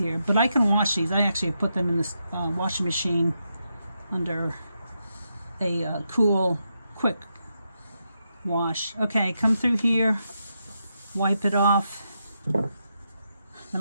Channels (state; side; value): inverted; both; correlation -0.84